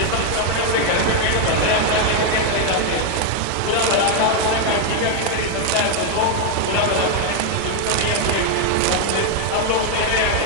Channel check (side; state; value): both; different; correlation 0.01